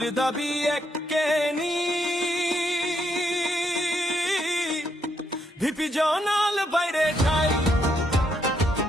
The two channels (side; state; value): both; normal; correlation 0.76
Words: দাবি এককেনি, ভিপি জনাল বাইরে যাই।